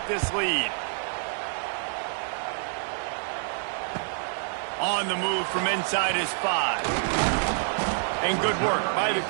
this lead. On the move from inside is 5. And good work by the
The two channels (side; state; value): left; silent; digital silence